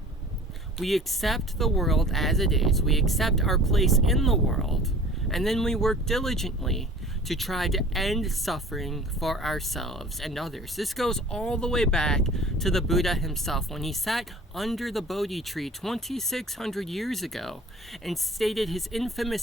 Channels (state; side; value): normal; both; correlation 0.46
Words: We accept the world as it is, we accept our place in the world, and then we work diligently to try to end suffering for ourselves and others. This goes all the way back to the Buddha himself when he sat under the Bodhi tree 2,600 years ago and stated his